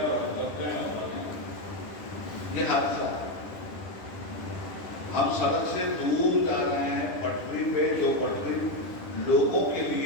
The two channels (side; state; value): right; late; 10 ms